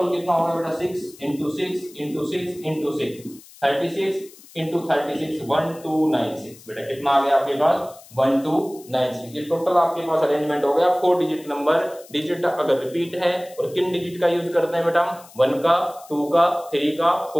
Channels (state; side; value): noise; left; hiss, 22 dB below the sound